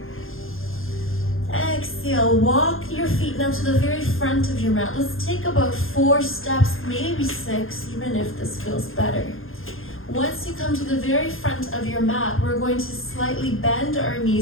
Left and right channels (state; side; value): late; right; 0.60 ms